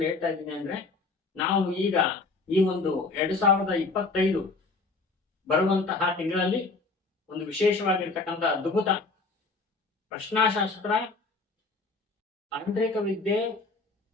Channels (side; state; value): right; quieter; 3.8 dB